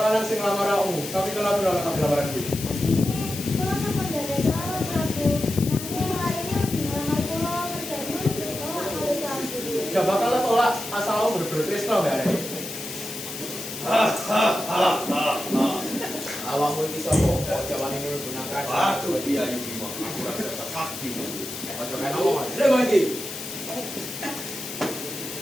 sing lamar aku. Tapi kenapa nolak lamaran gue? Gak bakal lo tolak asal lo bener-bener Krishna mbak Arek. Awakmu iki sapa? Kok jawane ini menggunakan Aduh dia ini mah aku rasa sakti. Ojo kan ngomong. Terima kasih.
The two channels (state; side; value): noise; left; hiss, 9 dB below the sound